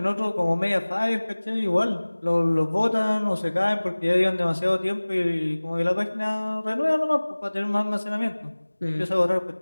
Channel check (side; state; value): both; inverted; correlation -1.00